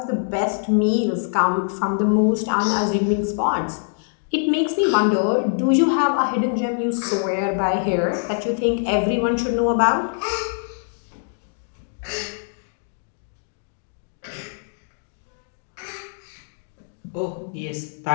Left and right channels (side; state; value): right; silent; digital silence